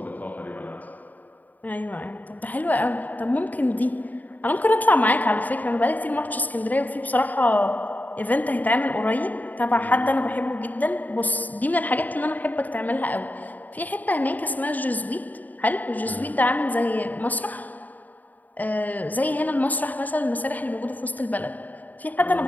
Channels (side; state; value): right; late; 0.081 ms